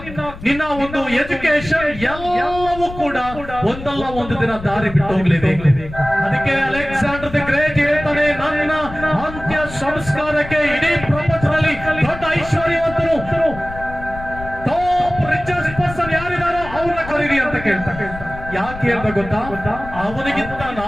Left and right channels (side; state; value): left; noise; rumble, 12 dB below the sound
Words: ನಿನ್ನ ಒಂದು ಎಜುಕೇಶನ್ ಎಲ್ಲವೂ ಕೂಡ ಒಂದಲ್ಲ ಒಂದು ದಿನ ದಾರಿ ಬಿಟ್ಟು ಹೋಗ್ಲೇಬೇಕು. ಅದಕ್ಕೆ ಅಲೆಕ್ಸಾಂಡರ್ ದಿ ಗ್ರೇಟ್ ಹೇಳ್ತಾನೆ, ನನ್ನ ಅಂತ್ಯ ಸಂಸ್ಕಾರಕ್ಕೆ ಇಡೀ ಪ್ರಪಂಚದಲ್ಲಿ ದೊಡ್ಡ ಐಶ್ವರ್ಯವಂತರು, ಟಾಪ್ ರಿಚೆಸ್ಟ್ ಪರ್ಸನ್ ಯಾರಿದಾರೋ ಅವ್ರನ್ನ ಕರೀರಿ ಅಂತ ಕೇಳ್ತಾರೆ. ಯಾಕೆ ಹೇಳ್ದ ಗೊತ್ತಾ? ಅವನಿಗಿಂತ